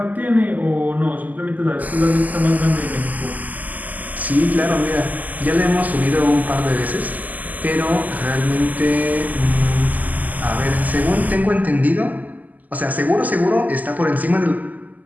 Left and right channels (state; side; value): late; left; 0.080 ms